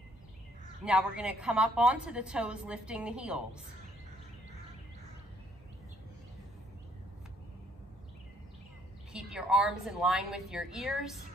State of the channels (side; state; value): both; normal; correlation 0.66